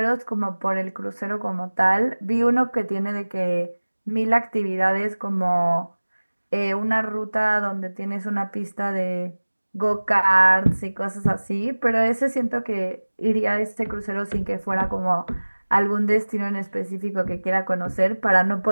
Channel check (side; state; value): both; inverted; correlation -1.00